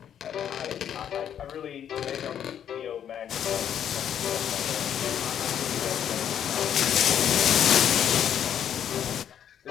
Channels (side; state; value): right; quieter; 9.4 dB